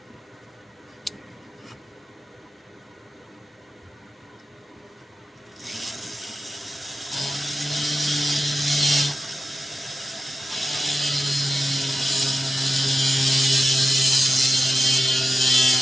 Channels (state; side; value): normal; both; correlation 0.91